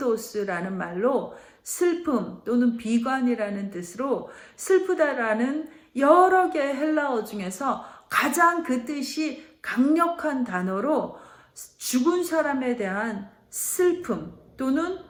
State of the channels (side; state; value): both; identical; correlation 1.00